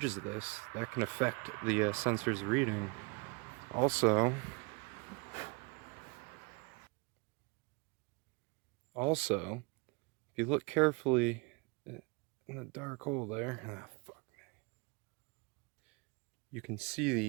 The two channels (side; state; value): left; quieter; 28.9 dB